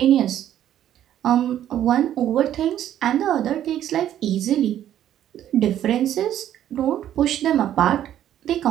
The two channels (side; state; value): left; quieter; 11.3 dB